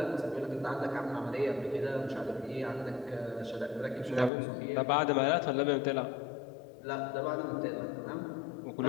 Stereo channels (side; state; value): right; drops out; at 4.3 s